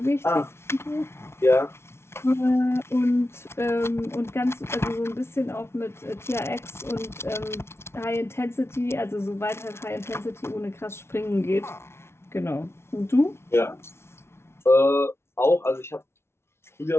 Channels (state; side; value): late; right; 0.12 ms